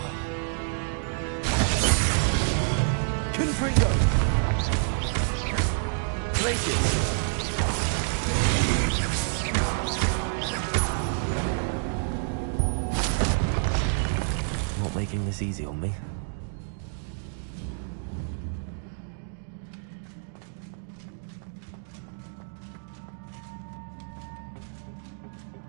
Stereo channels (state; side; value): silent; left; digital silence